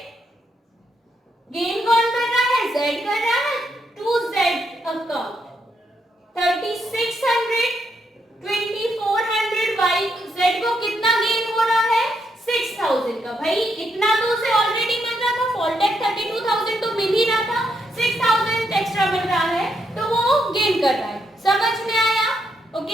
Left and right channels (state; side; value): normal; both; correlation 0.78